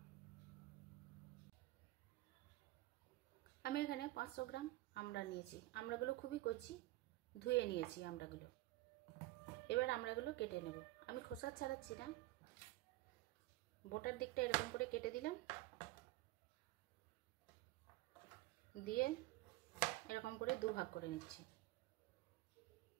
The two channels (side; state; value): left; quieter; 18.6 dB